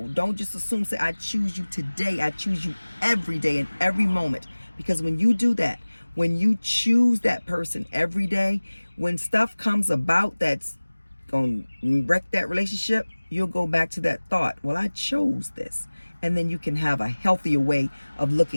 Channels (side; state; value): both; inverted; correlation -1.00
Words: don't just assume. Say, I choose you today. I choose you every day and every moment. Because when you do that, when you choose that person every day, when stuff comes about that's going to wreck that relationship, you'll go back to that thought, well, I chose this. And then you can have a healthier way of